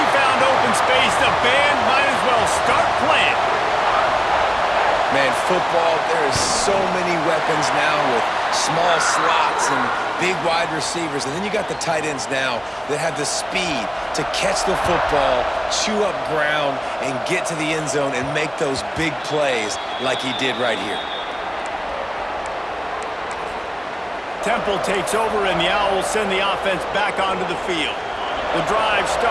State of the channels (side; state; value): both; identical; correlation 1.00